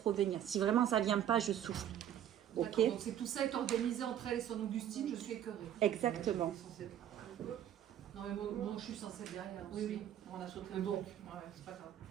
revenir. Si vraiment ça vient pas, je souffle. Ok. D'accord, donc tout ça est organisé entre elle et son Augustine, je suis écœurée. Exactement. Non mais moi je suis censée être derrière aussi. Oui, on a sauté Mais le bon. truc. Ouais, c'est pas grave.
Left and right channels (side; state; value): left; quieter; 10.7 dB